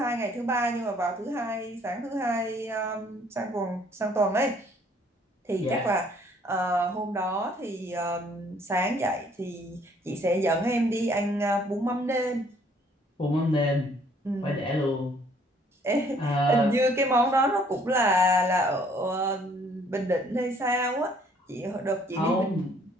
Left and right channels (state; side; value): normal; both; correlation 0.61